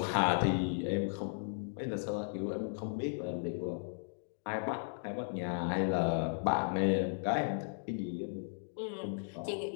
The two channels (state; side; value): silent; right; digital silence